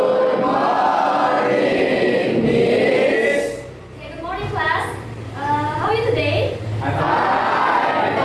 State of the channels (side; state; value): both; identical; correlation 1.00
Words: Okay, good morning, class. How are you today?